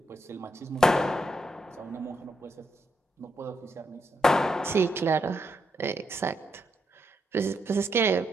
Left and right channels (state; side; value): normal; both; correlation 0.80